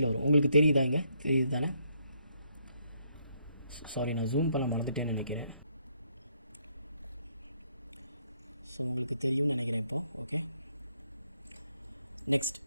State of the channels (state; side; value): inverted; both; correlation -0.73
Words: வரும். உங்களுக்கு தெரியுதா? இங்கே தெரியுது தானே? சாரி, நான் ஜூம் பண்ண மறந்துட்டேன்னு நினைக்கிறேன். ஸோ உங்களுக்கு தெரியும்னு நினைக்கிறேன் இப்போது. ஓகே, நெக்ஸ்ட்